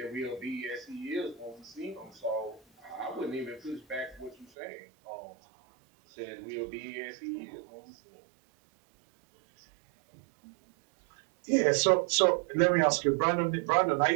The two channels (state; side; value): drops out; left; at 4.5 s